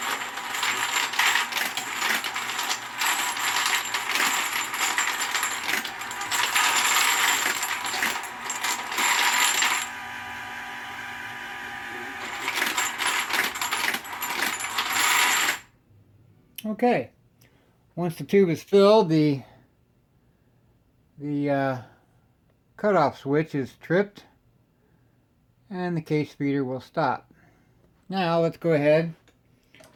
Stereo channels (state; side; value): identical; both; correlation 1.00